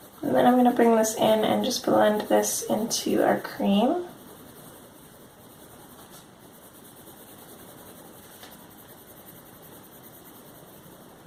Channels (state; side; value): identical; both; correlation 1.00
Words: And then I'm going to bring this in and just blend this into our cream.